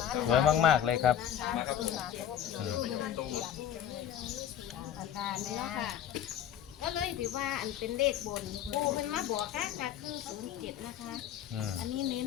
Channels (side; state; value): right; quieter; 10.1 dB